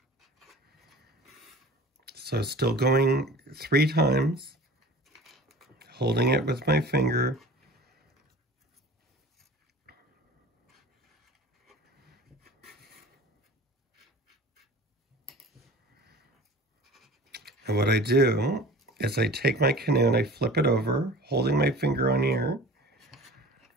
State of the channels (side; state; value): both; normal; correlation 0.42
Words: So still going 3 times, holding it with my finger. And what I do is I take my canoe and I flip it over, holding my finger on here.